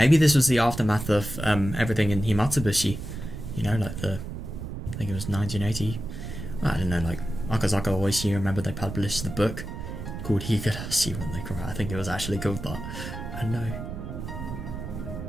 this was the aftermath of everything in Matsuribayashi. You know, like the... I think it was 1980. I don't know, like... Akazaka always here, remember they published the book called Higurashi when they cry. I think it was actually called that. I know.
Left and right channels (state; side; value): noise; right; rumble, 8 dB below the sound